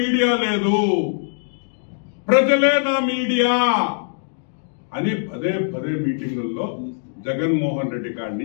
మీడియా లేదు, ప్రజలే నా మీడియా అని పదే పదే మీటింగుల్లో జగన్మోహన్ రెడ్డి కాడి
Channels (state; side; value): silent; right; digital silence